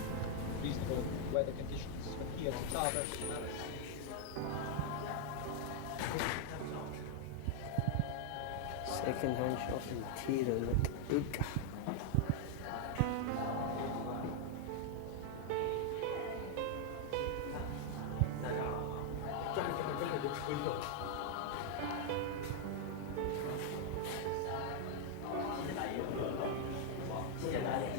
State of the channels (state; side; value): different; both; correlation 0.00